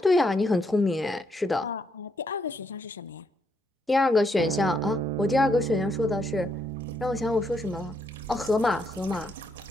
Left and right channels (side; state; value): both; normal; correlation 0.76